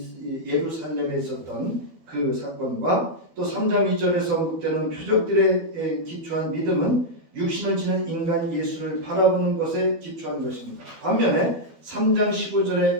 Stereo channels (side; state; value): left; late; 12 ms